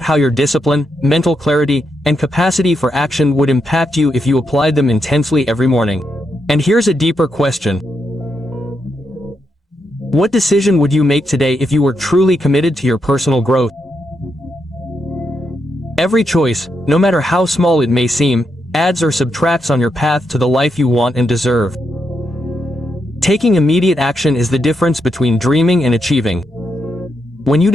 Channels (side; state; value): both; normal; correlation 0.82